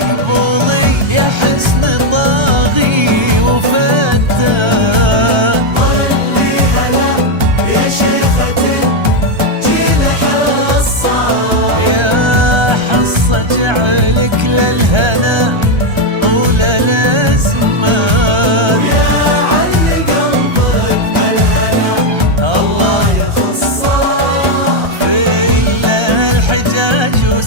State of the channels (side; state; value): left; late; 1.3 ms